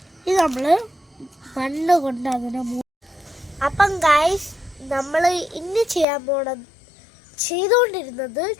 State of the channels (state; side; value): drops out; right; at 6.1 s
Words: ഇത് നമ്മൾ മണ്ണ് കൊണ്ട് അതിനെ അപ്പം ഗൈസ് നമ്മൾ ഇന്ന് ചെയ്തുകൊണ്ടിരുന്നത്